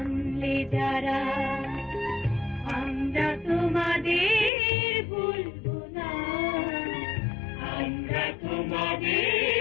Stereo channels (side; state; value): right; drops out; at 4.5 s